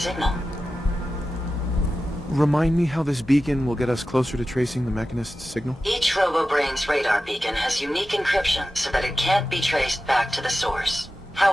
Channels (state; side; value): normal; both; correlation 0.93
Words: Remind me how this beacon will get us closer to tracing the Mechanist's signal? Each Robobrain's radar beacon has unique encryption so that it can't be traced back to the source.